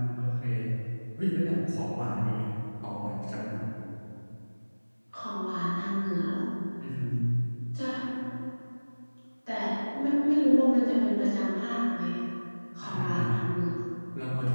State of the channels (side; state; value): both; inverted; correlation -1.00